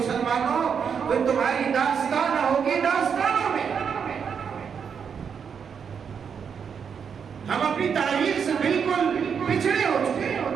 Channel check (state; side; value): quieter; left; 6.9 dB